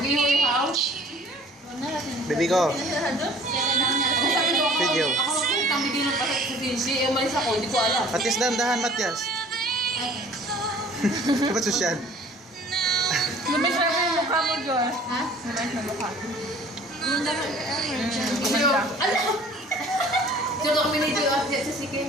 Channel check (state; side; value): normal; both; correlation 0.50